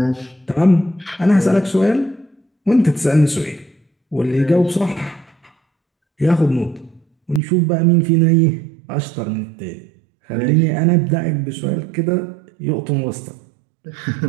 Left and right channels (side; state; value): left; drops out; at 7.4 s